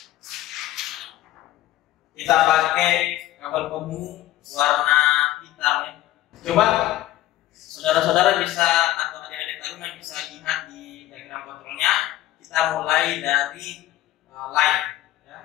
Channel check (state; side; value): quieter; right; 14.9 dB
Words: Kita pakai kabel pemu warna hitam ya. Coba saudara-saudara bisa atau adik-adik taruna bisa lihat di diagram kontrolnya. Kita mulai dari line. Ya.